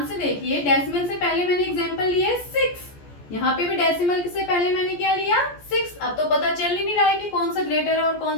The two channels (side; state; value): right; late; 14 ms